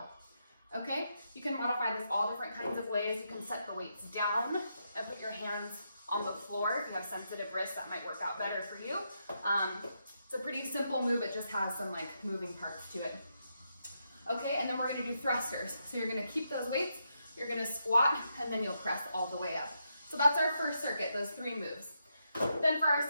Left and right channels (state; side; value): inverted; both; correlation -0.82